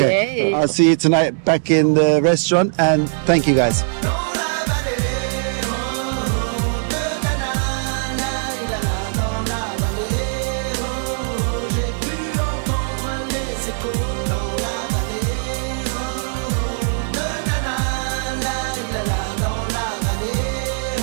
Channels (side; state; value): left; silent; digital silence